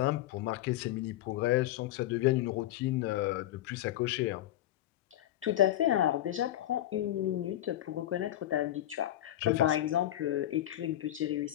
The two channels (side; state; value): right; quieter; 13.5 dB